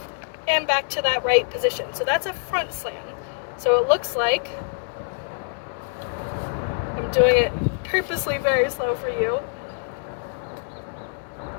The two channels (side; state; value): right; silent; digital silence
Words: and back to that right position. So that's a front slam. So it looks like, I'm doing it purposely very slow for you.